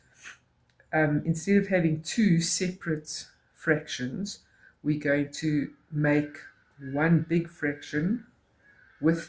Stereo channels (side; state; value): both; identical; correlation 1.00